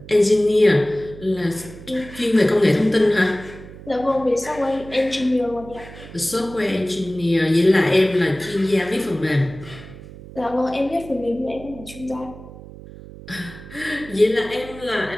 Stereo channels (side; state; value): right; noise; hum, 16 dB below the sound